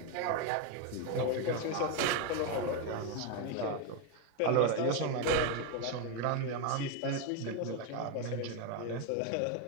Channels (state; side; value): different; both; correlation 0.02